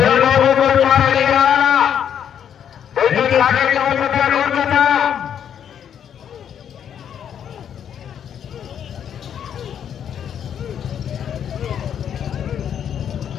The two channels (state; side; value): quieter; right; 8.9 dB